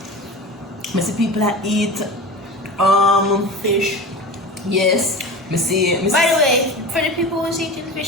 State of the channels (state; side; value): normal; both; correlation 0.32